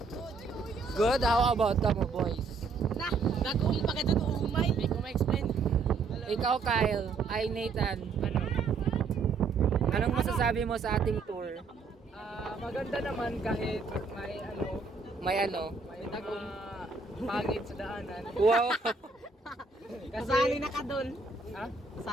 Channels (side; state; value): left; quieter; 4.4 dB